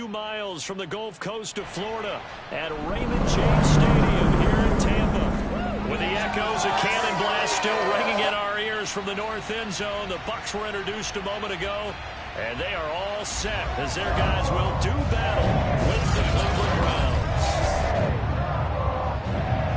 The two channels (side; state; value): both; identical; correlation 1.00